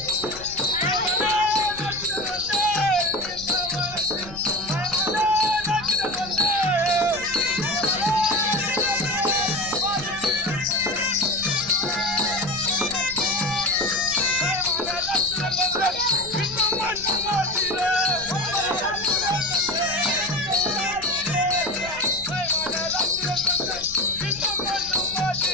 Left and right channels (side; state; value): left; noise; rumble, 17 dB below the sound